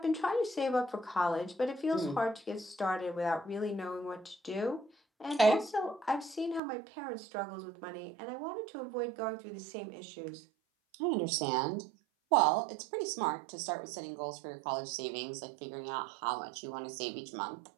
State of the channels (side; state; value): left; drops out; at 6.6 s